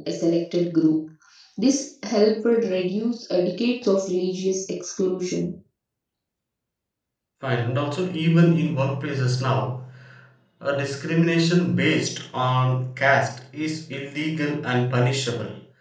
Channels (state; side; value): identical; both; correlation 1.00